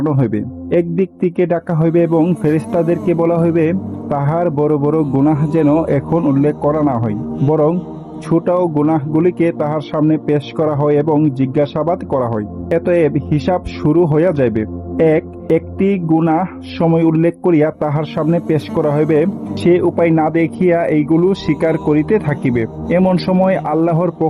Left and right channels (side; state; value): both; identical; correlation 1.00